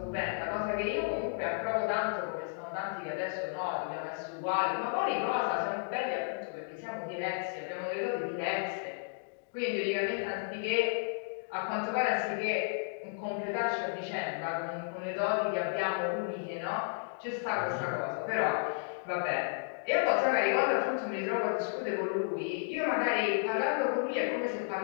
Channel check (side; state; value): right; silent; digital silence